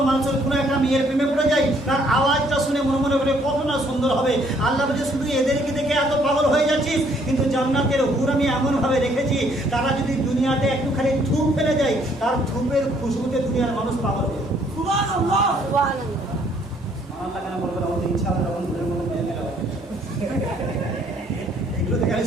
মানুষের কোনো একটা মেয়ের প্রেমে পড়ে যায়, তার আওয়াজটা শুনে মনে করে কত না সুন্দর হবে। আল্লাহ বলে, শুধু এদেরকে দেখে এত পাগল হয়ে যাচ্ছিস, কিন্তু জান্নাতের হুর আমি এমন ভাবে রেখেছি, তারা যদি দুনিয়াতে একটুখানি থুপ ফেলে যায়, তার থুপের খুশবুতে দুনিয়ার মানুষ পাগল হবে। সুবহানাল্লাহ। কেন বলবেন? আমাদের ইচ্ছা হবে তখন এগুলো দেখে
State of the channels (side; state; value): both; normal; correlation 0.65